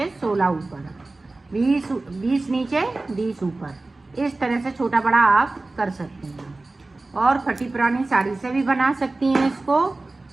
16 ऊपर, 20 नीचे 20 ऊपर, इस तरह से छोटा बड़ा आप कर सकती हैं। और फटी पुरानी साड़ी से भी बना सकती हैं इसको।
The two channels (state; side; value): quieter; left; 3.2 dB